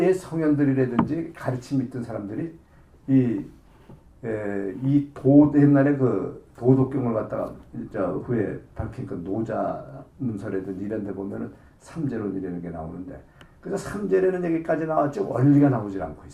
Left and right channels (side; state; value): both; identical; correlation 1.00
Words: 옛 성현들이라든지 가르침 있던 사람들이 옛날에 그 도덕경을 갖다가 후에 밝힌 그 노자 문서라든지 이런 데 보면은 삼재론이라는 게 나오는데 그래서 삼재라는 얘기까지 나왔지 원리가 나오질 않고